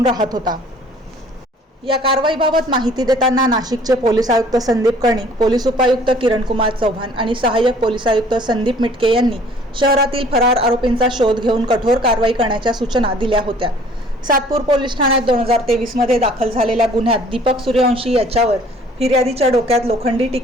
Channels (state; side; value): normal; both; correlation 0.54